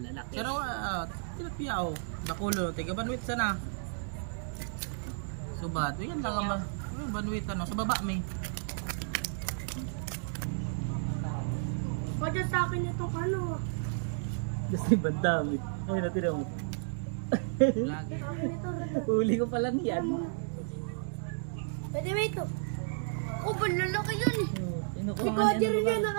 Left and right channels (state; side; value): silent; left; digital silence